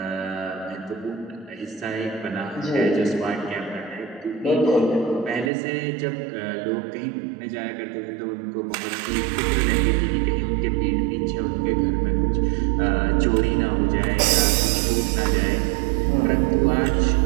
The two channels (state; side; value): drops out; left; at 5.5 s